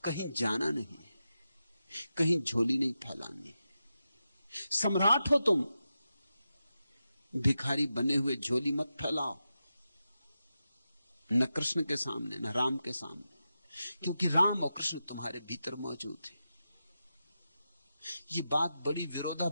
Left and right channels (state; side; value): inverted; both; correlation -0.90